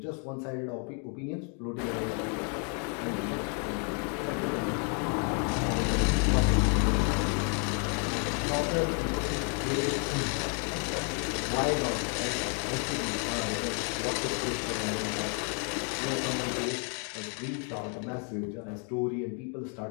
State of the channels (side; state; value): right; quieter; 39.7 dB